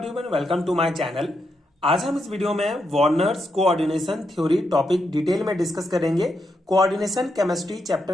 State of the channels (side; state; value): both; normal; correlation 0.82